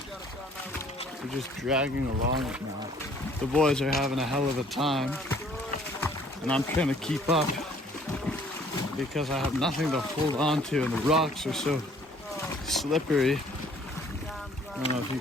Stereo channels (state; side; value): normal; both; correlation 0.58